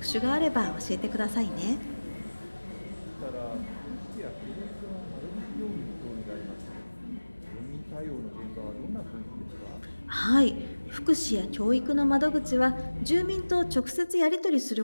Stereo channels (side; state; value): both; inverted; correlation -1.00